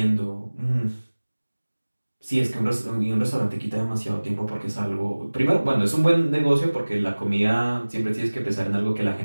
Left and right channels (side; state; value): both; inverted; correlation -1.00